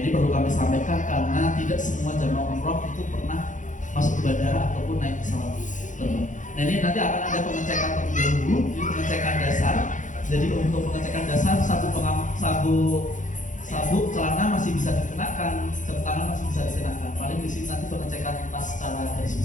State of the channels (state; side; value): late; right; 0.37 ms